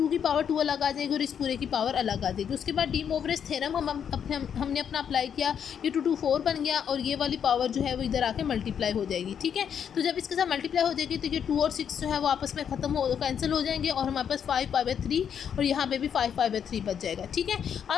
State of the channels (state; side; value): quieter; right; 8.1 dB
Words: की पावर 2 अलग आ जाएगी और इस पूरे की पावर अलग आ जाएगी। उसके बाद डी मोवरेज थ्योरम हमने अपना अप्लाई किया, ये 2 2 4 बन गया और ये वाली पावर जो है वो इधर आके मल्टीप्लाई हो जाएगी। ठीक है, तो जब इसके साथ मल्टीप्लाई हो जाएगी तो ये 2 और 6 जो है वो आपस में कैंसिल हो जाएंगे और हमारे पास 5 π/3 और यहाँ पे भी 5 π/3 बच जाएगा। ठीक है,